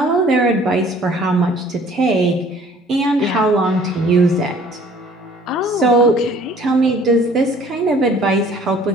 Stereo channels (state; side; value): normal; both; correlation 0.54